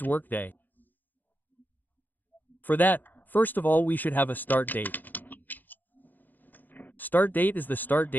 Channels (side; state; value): right; late; 0.087 ms